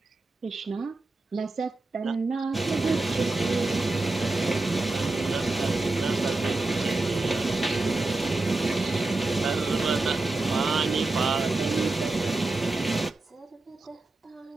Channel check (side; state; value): left; quieter; 3.2 dB